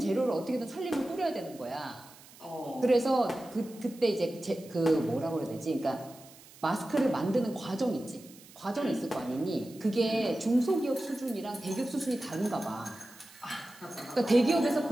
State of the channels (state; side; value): noise; right; hiss, 22 dB below the sound